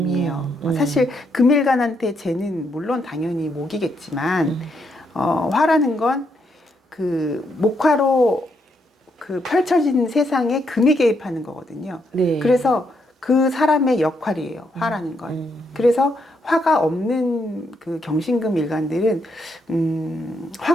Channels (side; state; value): both; normal; correlation 0.77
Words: 사실 금일간한테 재는 물론 당연히 목이겠지만 화라는 건 그 목화로 그 펼쳐진 세상에 금이 개입하는 거거든요. 네. 그래서 그 사람의 역할이에요. 화라는 건. 그래서 화가 없는 그 경신금 일간들은